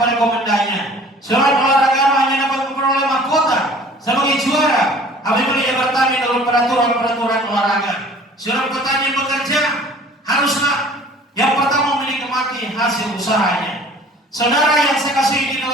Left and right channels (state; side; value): normal; both; correlation 0.49